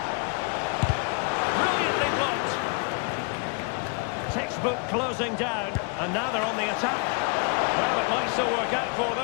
Brilliantly blocked. Textbook closing down, and now they're on the attack. Well, it might still work out for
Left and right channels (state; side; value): quieter; right; 36.6 dB